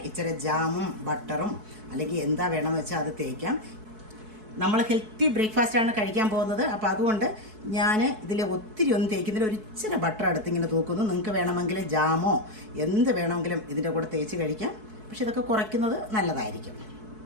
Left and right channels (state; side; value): late; left; 4.6 ms